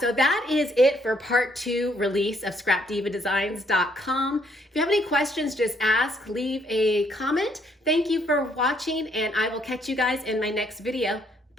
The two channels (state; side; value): normal; both; correlation 0.68